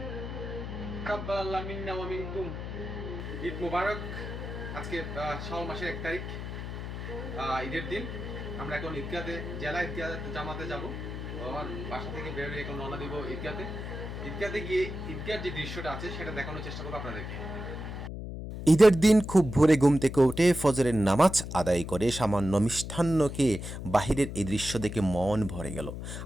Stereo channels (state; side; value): noise; left; hum, 7 dB below the sound